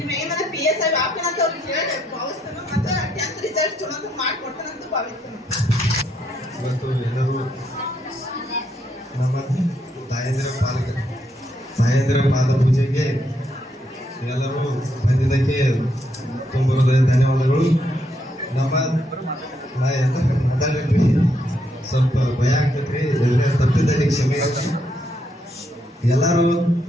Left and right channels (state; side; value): normal; both; correlation 0.76